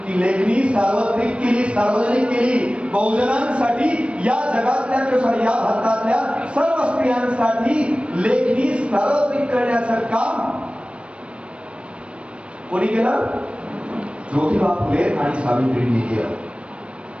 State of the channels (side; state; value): left; late; 0.060 ms